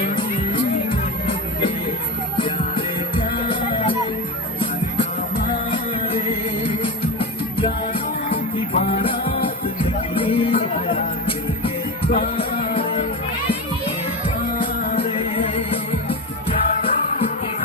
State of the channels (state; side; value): normal; both; correlation 0.20